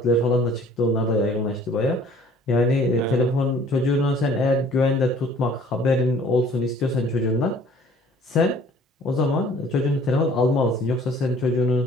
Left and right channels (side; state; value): both; normal; correlation 0.53